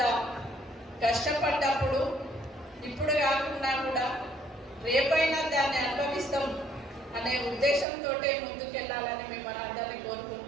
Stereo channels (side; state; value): left; drops out; at 7.9 s